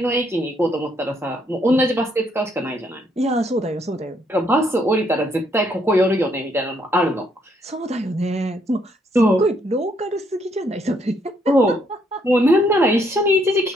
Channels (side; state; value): both; normal; correlation 0.71